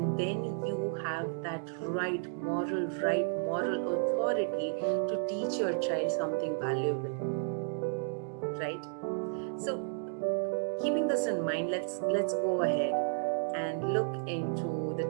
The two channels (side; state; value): left; silent; digital silence